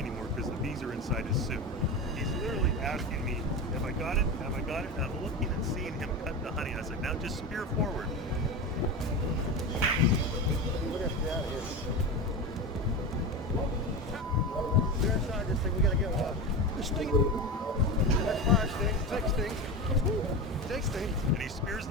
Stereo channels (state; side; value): normal; both; correlation 0.22